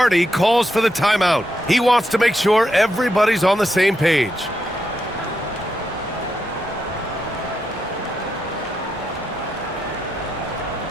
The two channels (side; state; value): both; normal; correlation 0.83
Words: calls for the timeout. He wants to make sure everybody's on the same page.